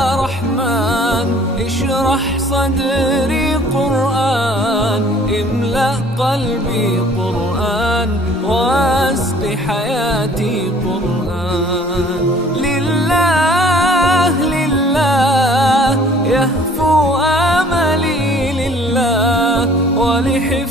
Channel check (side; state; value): both; normal; correlation 0.54